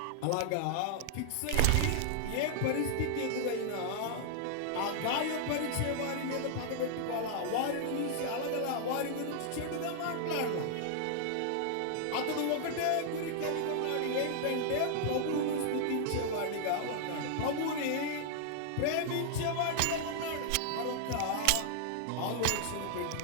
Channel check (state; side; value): different; both; correlation -0.01